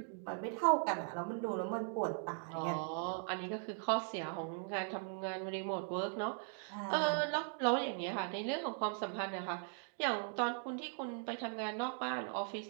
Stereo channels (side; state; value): left; silent; 52 dB below the other